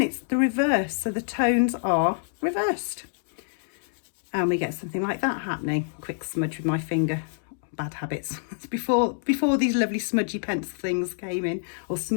it's the reverse, so the tones are reversed. And we get something like that happening. Quick smudge with my finger. Bad habits. before these lovely smudgy pencil things came in, or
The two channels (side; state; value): right; silent; digital silence